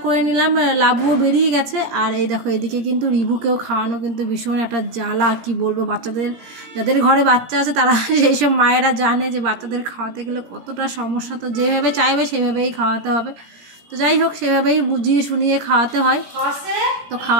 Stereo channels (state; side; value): late; left; 17 ms